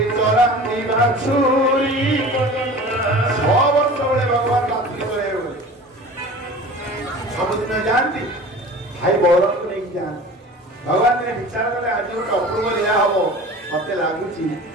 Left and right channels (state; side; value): normal; both; correlation 0.39